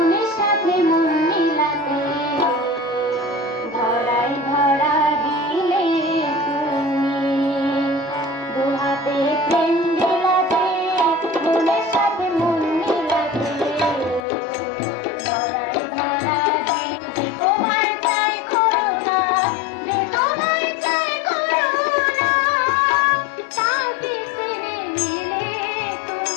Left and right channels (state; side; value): drops out; right; at 14.2 s